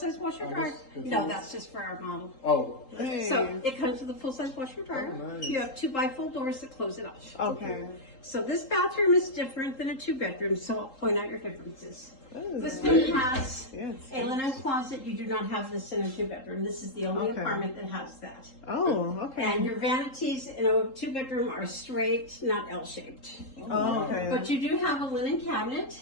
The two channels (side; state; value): right; late; 3.8 ms